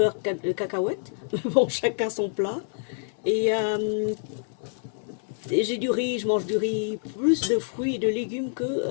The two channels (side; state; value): right; silent; 57 dB below the other